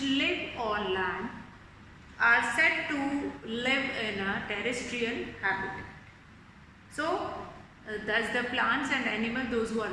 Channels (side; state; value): both; identical; correlation 1.00